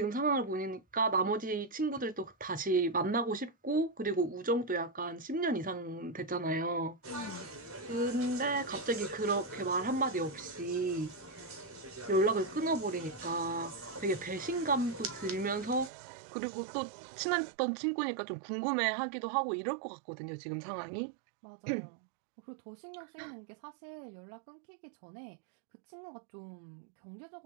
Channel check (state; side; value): drops out; left; at 15.9 s